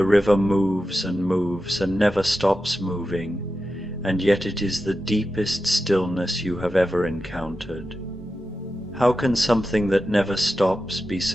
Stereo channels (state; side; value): normal; both; correlation 0.91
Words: river moves and never stops moving, and yet it is the deepest stillness you have ever encountered. How can something that never stops be